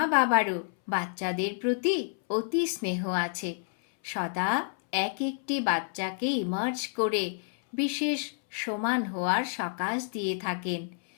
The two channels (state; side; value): silent; right; 58 dB below the other